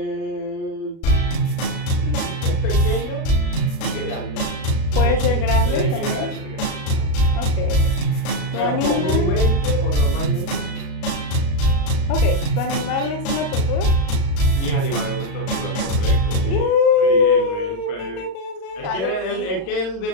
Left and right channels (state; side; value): late; right; 37 ms